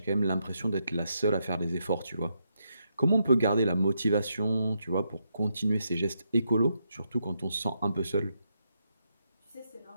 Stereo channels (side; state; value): both; inverted; correlation -0.80